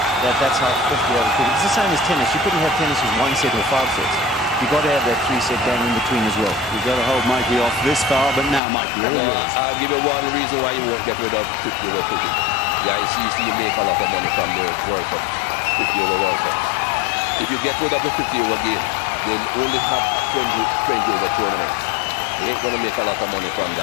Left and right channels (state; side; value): drops out; right; at 8.6 s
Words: that's how 50-over cricket. It's the same as tennis. You couldn't have tennis with 1 set or 5 sets. You've got to have that 3-set game in between as well. You've got to hold Mikey off this far, but now, Mikey, all yours. I'll give you one reason why you won't get rid of 50-over cricket. Yeah, you make a lot of money from the World Cup, 50-over World Cups. If you get rid of the 50-over game, they'll only have 20-over tournaments. They ain't going to make a lot of money from